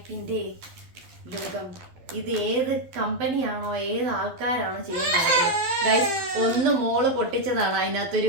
ലോകം. ഇത് ഏത് കമ്പനിയാണോ ഏത് ആൾക്കാരാണോ ചെയ്യുന്നത് ഗൈസ്? ഒന്ന് മോള് പൊട്ടിച്ചതാണ്.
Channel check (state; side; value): late; left; 12 ms